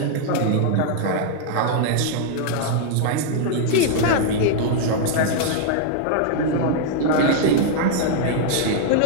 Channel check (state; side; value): different; both; correlation -0.01